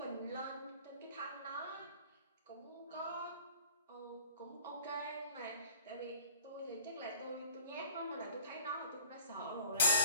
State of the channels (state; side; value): inverted; both; correlation -0.51